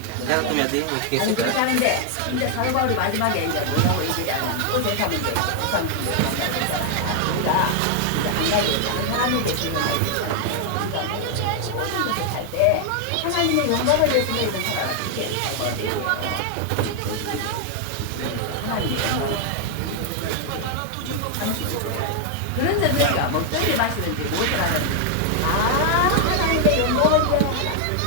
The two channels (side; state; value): both; different; correlation 0.00